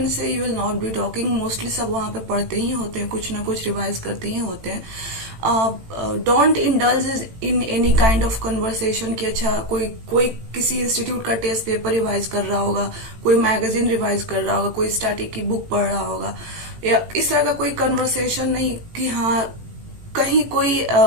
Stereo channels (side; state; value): left; late; 18 ms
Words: से you will not be talking. Mostly सब वहां पे पढ़ते ही होते हैं, कुछ ना कुछ रिवाइज करते ही होते हैं. Don't indulge in any kind of conversation कि अच्छा कोई किसी इंस्टीट्यूट का टेस्ट पेपर रिवाइज कर रहा होगा, कोई मैगजीन रिवाइज कर रहा होगा, कोई स्टैटिक की बुक पढ़ रहा होगा, या इस तरह का कोई कन्वर्सेशन नहीं कि हाँ कहीं कोई